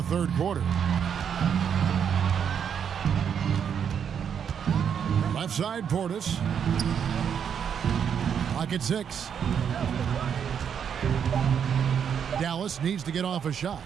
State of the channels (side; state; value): left; quieter; 7.9 dB